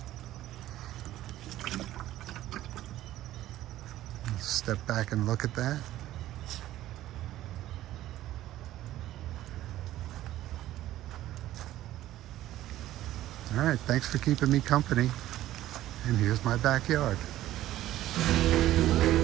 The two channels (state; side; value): quieter; left; 14.2 dB